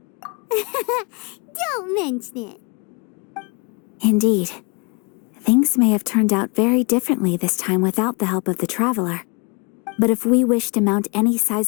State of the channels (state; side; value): quieter; right; 31.6 dB